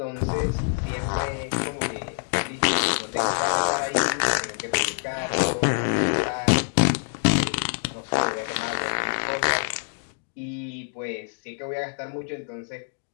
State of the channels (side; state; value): right; silent; 61 dB below the other